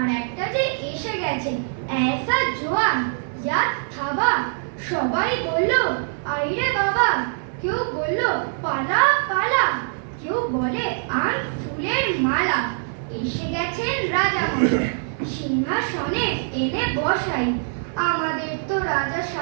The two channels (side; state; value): left; silent; digital silence